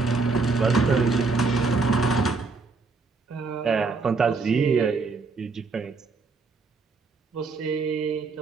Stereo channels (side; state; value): left; quieter; 4.2 dB